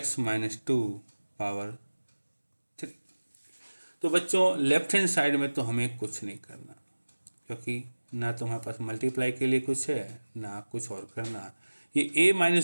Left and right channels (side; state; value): both; inverted; correlation -1.00